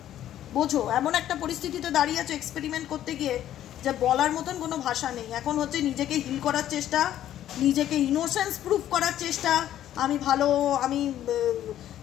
বোঝো এমন একটা পরিস্থিতিতে দাঁড়িয়ে আছো এক্সপেরিমেন্ট করতে গিয়ে যে বলার মতন কোনো ভাষা নেই। এখন হচ্ছে নিজেকে হিল করার চেষ্টা, নিজেকে ইনোসেন্স প্রুফ করার চেষ্টা, আমি ভালো, আমি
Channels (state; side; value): quieter; right; 11.9 dB